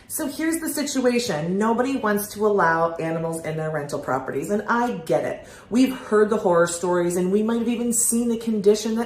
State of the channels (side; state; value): both; identical; correlation 1.00